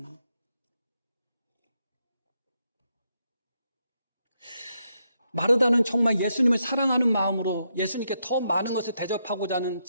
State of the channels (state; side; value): inverted; both; correlation -0.80